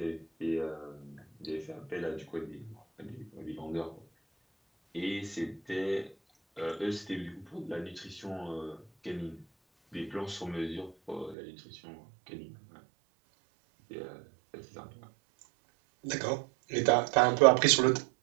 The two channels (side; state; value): left; drops out; at 11.4 s